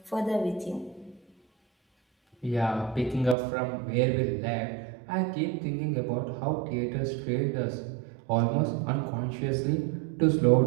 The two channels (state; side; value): drops out; left; at 3.4 s